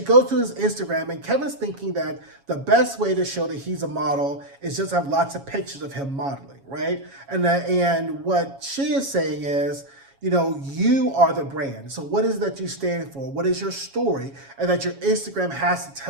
to his Instagram, and Kevin's thinking that the best way to show that he's a model is just have lots of pictures of him modeling, right? And what she is saying is, you are the brand. So what is it that you stand for? What is your story? And that your Instagram has to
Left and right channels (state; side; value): late; left; 7.3 ms